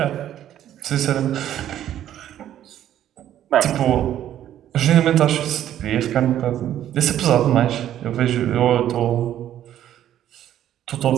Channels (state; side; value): quieter; left; 11.5 dB